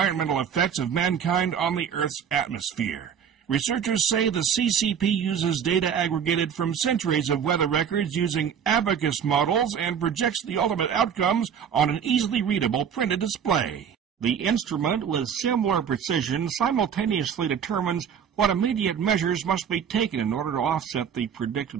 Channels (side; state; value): left; quieter; 7.8 dB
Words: effects of mankind on the Earth's atmosphere. Researchers say the CCP uses data aggregated from centuries of weather records using abacus models and projects the ultimate outcomes on an easily readable printed display. The instrument, with similar precision, simultaneously determines what immediate measures must be taken in order to offset the